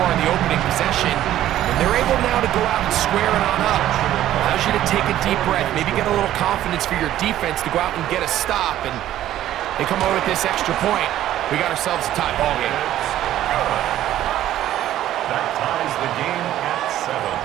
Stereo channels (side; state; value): left; quieter; 12.8 dB